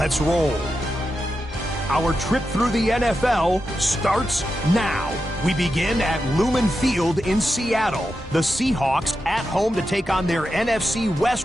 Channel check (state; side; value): normal; both; correlation 0.89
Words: roll. Our trip through the NFL starts now. We begin at Lumen Field in Seattle. The Seahawks at home to take on their NFC